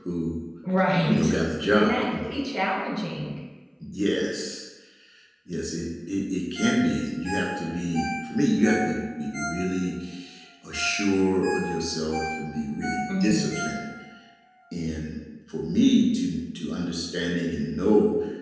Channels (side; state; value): both; identical; correlation 1.00